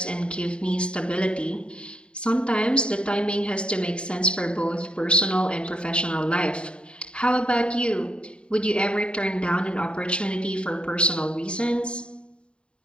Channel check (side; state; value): right; late; 0.054 ms